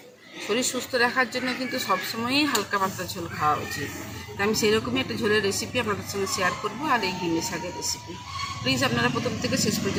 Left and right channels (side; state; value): both; identical; correlation 1.00